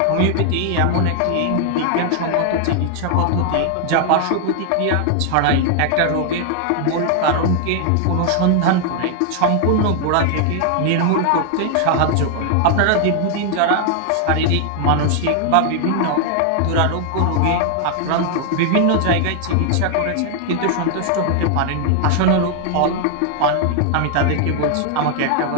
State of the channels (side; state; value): both; different; correlation 0.00